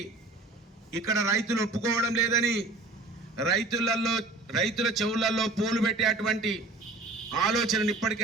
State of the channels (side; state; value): left; quieter; 3.2 dB